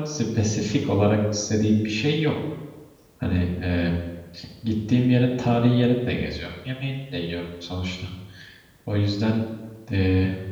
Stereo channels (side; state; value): both; identical; correlation 1.00